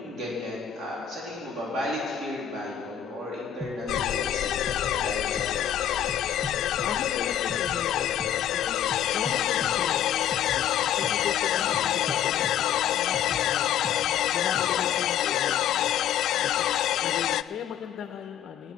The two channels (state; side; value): quieter; right; 9.8 dB